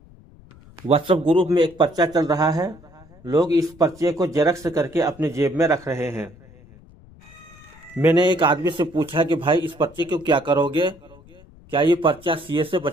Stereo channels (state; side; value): noise; left; rumble, 24 dB below the sound